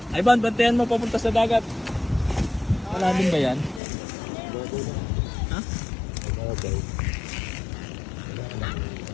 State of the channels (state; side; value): drops out; right; at 3.8 s